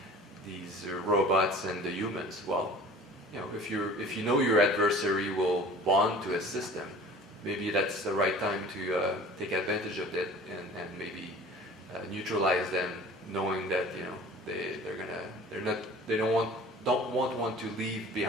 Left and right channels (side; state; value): both; normal; correlation 0.44